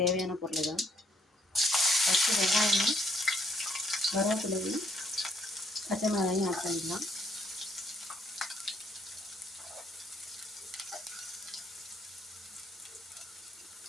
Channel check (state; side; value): normal; both; correlation 0.69